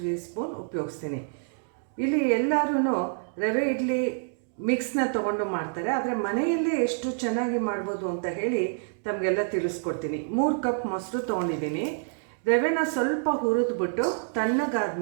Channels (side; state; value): left; silent; digital silence